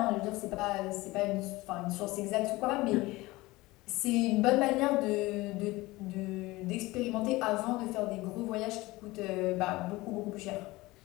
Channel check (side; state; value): right; quieter; 20.5 dB